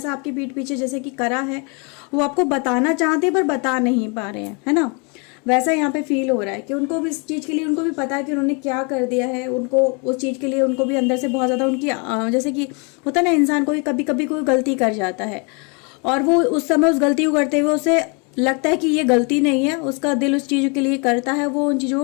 आपकी पीठ पीछे जैसे कि करा है, वो आपको बताना चाहते हैं पर बता नहीं पा रहे हैं, है ना। वैसा यहाँ पे फील हो रहा है कि उनको भी इस चीज़ के लिए उनको भी पता है कि उन्होंने क्या कर दिया है, उनको उस चीज़ के लिए उनको भी अंदर से बहुत ज़्यादा उनकी जैसे कि होता है ना इंसान को कभी कभी कोई गलती कर जाता है और वो उस समय उस गलती को करते हुए उसे लगता है कि ये गलती नहीं है, उसका दिल उस चीज़ के लिए करता है, वो उन चीज़ों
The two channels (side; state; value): right; quieter; 33.8 dB